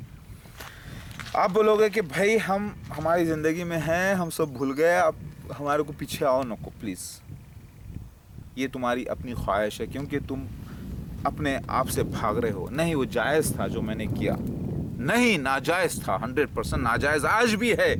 आप बोलोगे कि भाई हम हमारी ज़िंदगी में हैं, हम सब भूल गए, अब हमारे को पीछे आओ। नको प्लीज़, ये तुम्हारी अपनी ख्वाहिश है, क्योंकि तुम अपने आप से भाग रहे हो। नहीं, वो जायज़ था जो मैंने किया, नहीं नाजायज़ था, 100% नाजायज़ आज भी है।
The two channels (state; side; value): identical; both; correlation 1.00